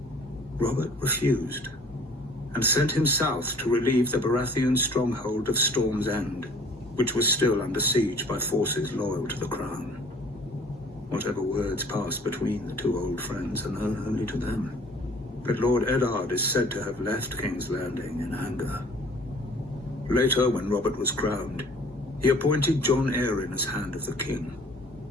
Robert refused, and sent him south to relieve the Baratheon stronghold of Storm's End, which was still under siege by forces loyal to the crown. Whatever words passed between the two old friends are known only to them. But Lord Eddard is said to have left King's Landing in anger. Later, when Robert was crowned, he appointed Jon Arryn as Hand of the King.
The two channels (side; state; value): both; normal; correlation 0.51